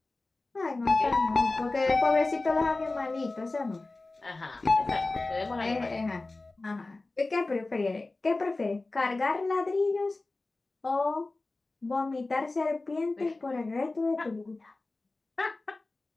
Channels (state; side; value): quieter; right; 3.2 dB